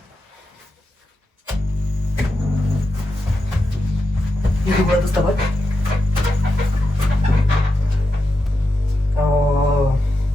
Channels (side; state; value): both; normal; correlation 0.88